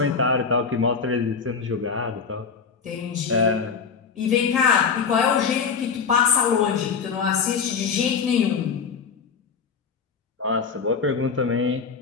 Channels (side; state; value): right; quieter; 5.8 dB